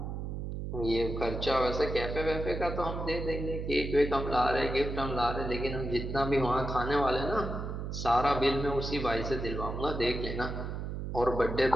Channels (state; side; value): noise; right; hum, 5 dB below the sound